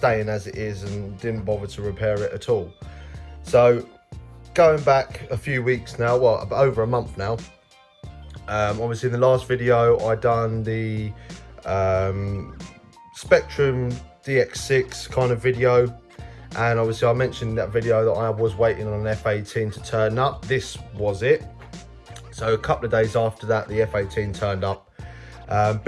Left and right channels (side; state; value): both; identical; correlation 1.00